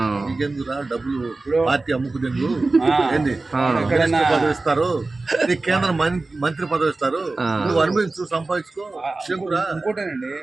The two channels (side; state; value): left; quieter; 3.4 dB